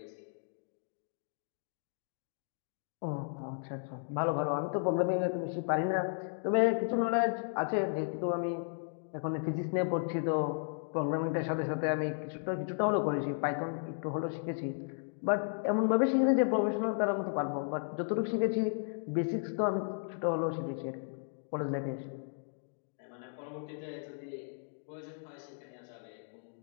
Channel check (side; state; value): right; silent; digital silence